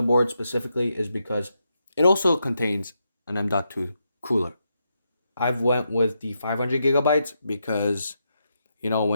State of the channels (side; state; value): both; inverted; correlation -0.83